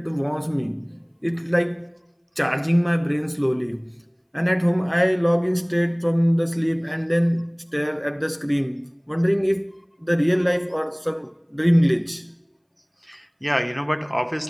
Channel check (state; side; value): identical; both; correlation 1.00